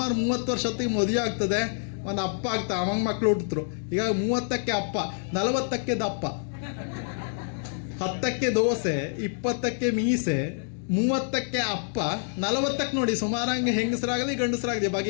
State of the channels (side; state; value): right; silent; digital silence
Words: 30 ವರ್ಷತ್ತಿಗೆ ಮದುವೆ ಆಗ್ತದೆ, ಒಂದು ಅಪ್ಪ ಆಗ್ತಾವ, ಅವಂಗ ಮಕ್ಳು ಹುಟ್ಟಿದ್ರು. ಈಗ 30ಕ್ಕೆ ಅಪ್ಪ, 40ಕ್ಕೆ ದಪ್ಪ. 10ಕ್ಕೆ ದೋಸೆ, 20ಕ್ಕೆ ಮೀಸೆ, 30ಕ್ಕೆ ಅಪ್ಪ, 40ಕ್ಕೆ ನೋಡಿ ಸುಮಾರಂಗೆ ಹೆಂಗಸರಾಗಲಿ ಗಂಡಸರಾಗಲಿ